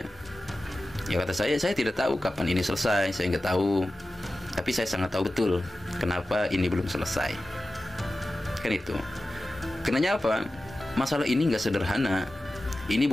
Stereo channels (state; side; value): normal; both; correlation 0.94